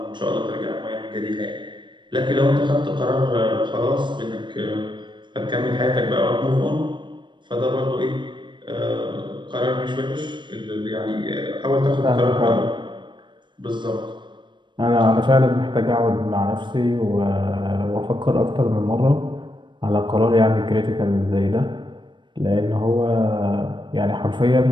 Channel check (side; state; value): left; late; 0.22 ms